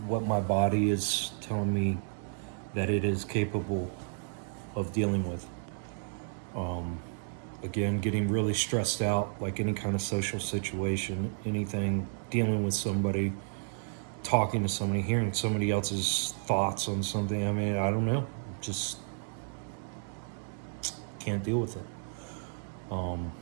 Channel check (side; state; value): left; silent; 56 dB below the other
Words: my body is telling me that it is capable of dealing with. Again, getting really stressed out, like any kind of social situation, anything, dealing with somebody, talking to somebody, hearing somebody else's thoughts on something. I mean, I don't know, just can't deal with it.